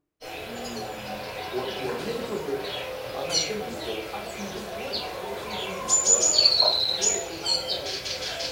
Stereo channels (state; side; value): identical; both; correlation 1.00